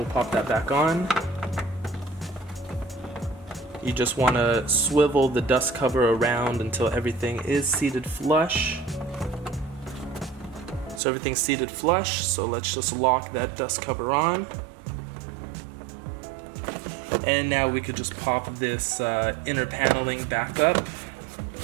pop that back on. You just want to swivel the dust cover around until everything is seated flush. So everything's seated flush, so let's just lock that dust cover on. And now we could just pop this inner paneling back up.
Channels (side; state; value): left; drops out; at 11.0 s